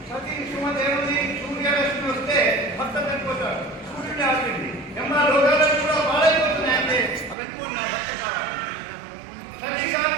సతీ సుమతి ఏముంది, సూర్యరశ్మి వస్తే భర్త చనిపోతాడు, సూర్యుడు ఆపింది ఎమ్మా లోకాలను కూడా బాడైపోతున్నాయి అంటే అవన్నీ నా భర్త కావాలి. సతీ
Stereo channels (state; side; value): drops out; left; at 7.4 s